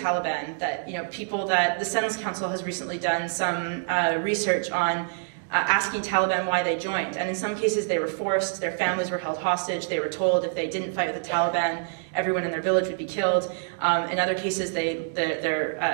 that, you know, people that the Sentence Council has recently done some research on asking Taliban why they joined. And in some cases they were forced, their families were held hostage, they were told if they didn't fight with the Taliban, everyone in their village would be killed. In other cases,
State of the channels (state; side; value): silent; left; digital silence